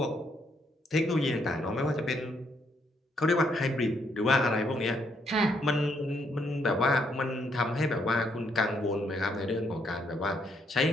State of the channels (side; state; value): both; normal; correlation 0.74